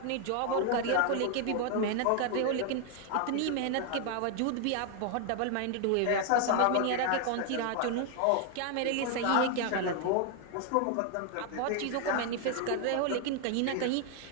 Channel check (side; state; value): both; different; correlation 0.00